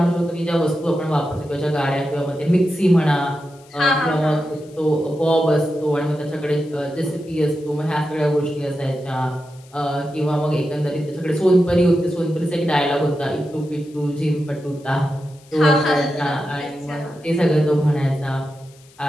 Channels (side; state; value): left; noise; hiss, 28 dB below the sound